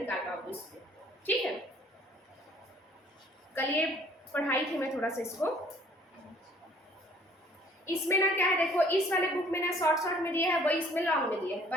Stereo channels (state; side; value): normal; both; correlation 0.57